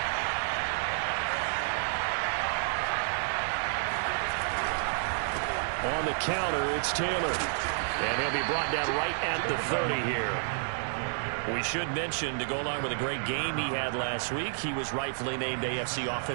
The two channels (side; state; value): left; silent; digital silence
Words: On the counter, it's Taylor. And he'll be brought down right at the 30 here. We should mention, to go along with a great game he had last week, he was rightfully named AFC